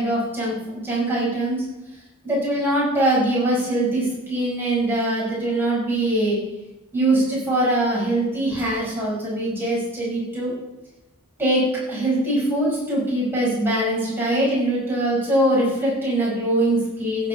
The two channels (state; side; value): normal; both; correlation 0.42